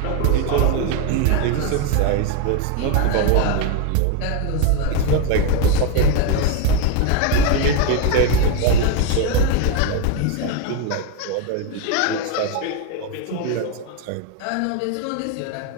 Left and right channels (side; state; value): both; different; correlation 0.02